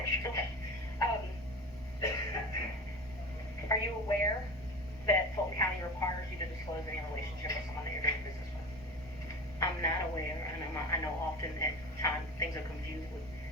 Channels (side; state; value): right; noise; rumble, 21 dB below the sound